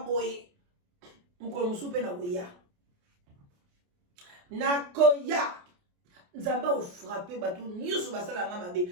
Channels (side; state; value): left; late; 28 ms